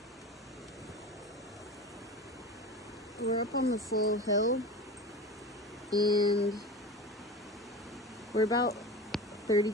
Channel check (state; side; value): normal; both; correlation 0.30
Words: We're up on the full hill, and we're about 30